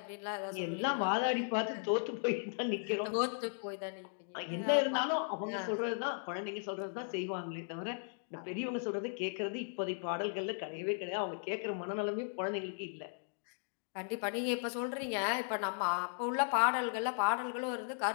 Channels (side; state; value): right; silent; digital silence